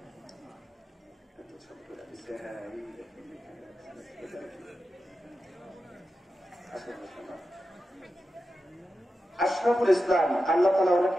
আশরাফুল ইসলাম, আল্লাহ তাআলা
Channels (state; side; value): normal; both; correlation 0.91